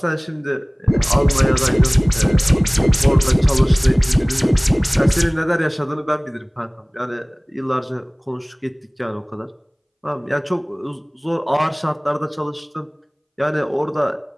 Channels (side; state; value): both; identical; correlation 1.00